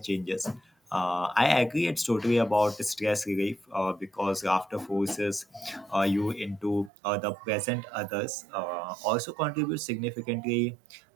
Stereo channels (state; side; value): drops out; left; at 6.9 s